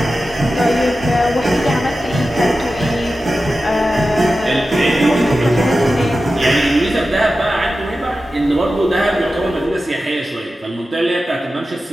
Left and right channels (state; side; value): normal; both; correlation 0.93